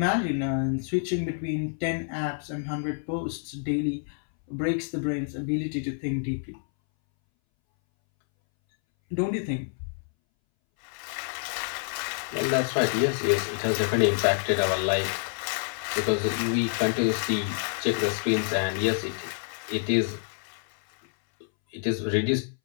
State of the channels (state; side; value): silent; right; 60 dB below the other